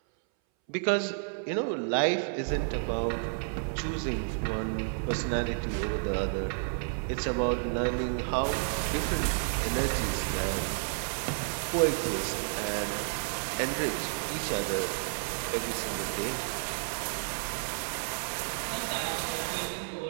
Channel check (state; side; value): silent; left; 57 dB below the other